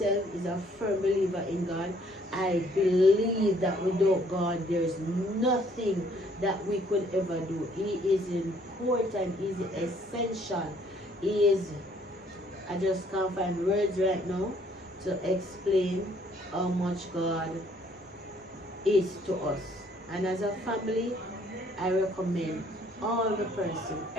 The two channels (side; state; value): both; normal; correlation 0.63